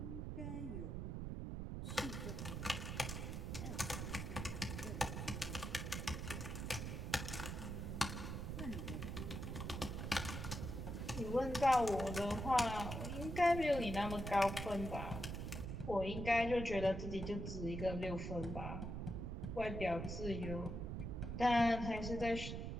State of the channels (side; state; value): right; noise; rumble, 4 dB below the sound